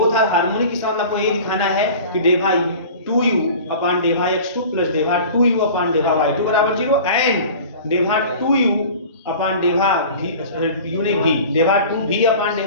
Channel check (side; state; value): both; inverted; correlation -0.40